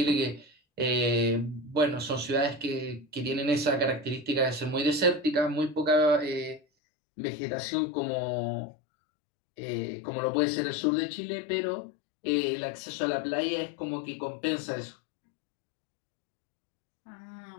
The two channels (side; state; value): right; drops out; at 6.6 s